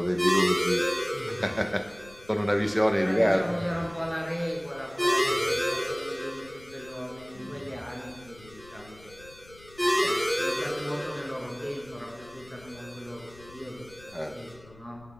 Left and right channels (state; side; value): noise; left; rumble, 22 dB below the sound